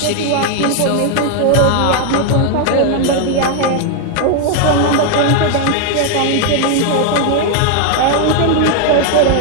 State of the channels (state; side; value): different; both; correlation 0.00